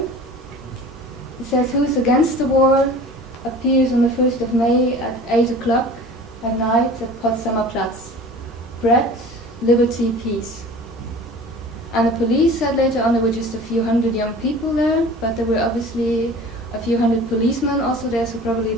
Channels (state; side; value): normal; both; correlation 0.41